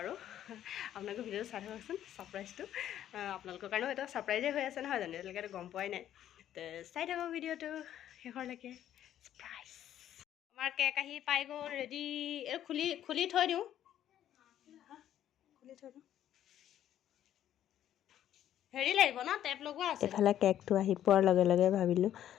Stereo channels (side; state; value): right; quieter; 11.3 dB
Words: আৰু আপোনালোকে ভিডিঅ'টো চাই থাককচোন ছাৰপ্ৰাইজটো আপোনালোকৰ কাৰণেও এটা ছাৰপ্ৰাইজে হৈ আছে নহয় জানো এতিয়ালৈকেতো গম পোৱাই নাই তো চাই থাকক ভিডিঅ'টো শেষৰলৈকে ছাৰপ্ৰাইজ আমাৰ কেক আহি পাই গ'ল ৰেডি এই খুলি থৈ দিওঁ হেৰি লাগিব ন টেপ লগোৱা আছে এফালে কেকটো আহি পোৱাৰ লগে লগে ভাবিলোঁ